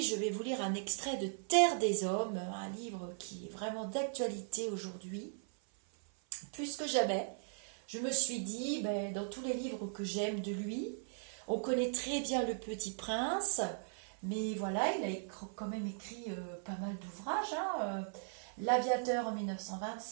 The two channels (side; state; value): left; silent; 52 dB below the other